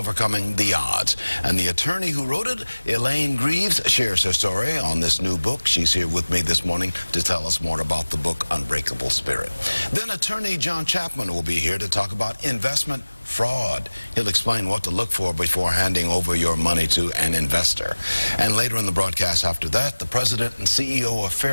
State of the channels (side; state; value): both; inverted; correlation -1.00